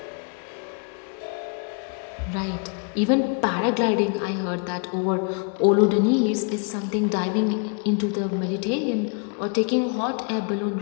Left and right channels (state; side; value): quieter; right; 37.5 dB